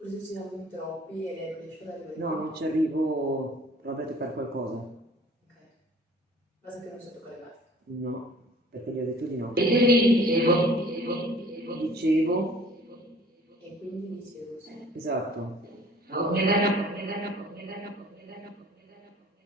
ci siamo in troppi e non riesco ad arrivare. No, non ci arrivo. Probabilmente per qualcosa. Ok. Basta che non so toccare la. No, perché gli ho detto di no. Dicevo. E quindi dicevo sì. Esatto.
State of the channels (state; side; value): normal; both; correlation 0.52